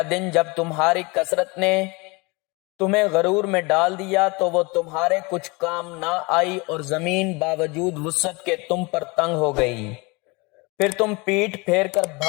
دن جب تمہاری کثرت نے تمہیں غرور میں ڈال دیا تو وہ تمہارے کچھ کام نہ آئی اور زمین باوجود وسعت کے تم پر تنگ ہو گئی۔ پھر تم پیٹھ پھیر کر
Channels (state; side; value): quieter; right; 26.8 dB